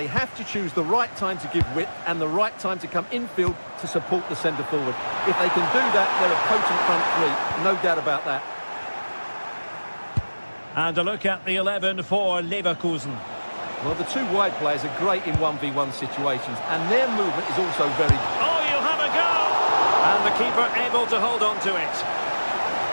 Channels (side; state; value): both; inverted; correlation -1.00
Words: have to choose the right time to give width and the right time to come infield to support the centre forward. If they can do that, they're a potent front three. No doubt about that. And a look at the 11 for Leverkusen. Well, the two wide players are great in 1v1 situations, and their movement is also very... Oh, you'll have a go! And the keeper able to hold on to it.